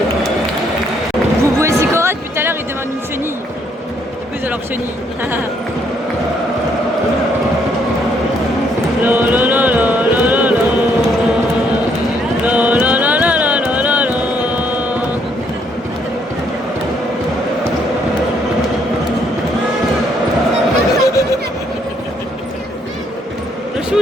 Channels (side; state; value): both; normal; correlation 0.70